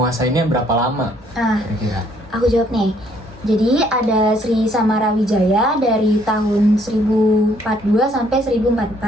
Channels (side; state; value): both; normal; correlation 0.65